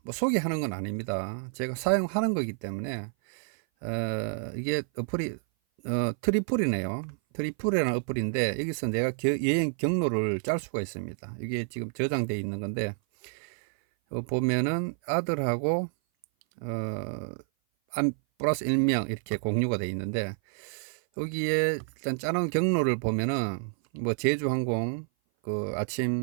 뭐 소개하는 건 아닙니다. 제가 사용하는 거기 때문에, 이게 어플이, 트리플이네요. 트리플이라는 어플인데, 여기서 내가 여행 경로를 짤 수가 있습니다. 이게 지금 저장되어 있는 건데, 보면은 아들하고, 플러스 1명 이렇게 공유가 되어 있는데, 여기에 일단 짜놓은 경로를 보면은, 뭐 제주항공, 그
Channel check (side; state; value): left; silent; 56 dB below the other